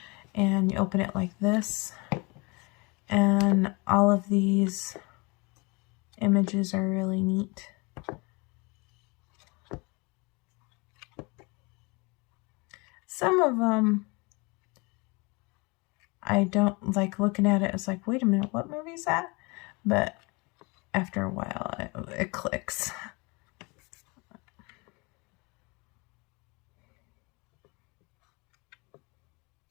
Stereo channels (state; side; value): quieter; right; 27.9 dB